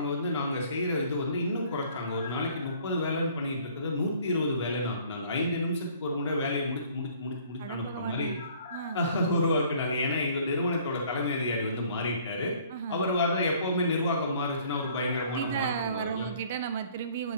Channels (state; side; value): inverted; both; correlation -0.56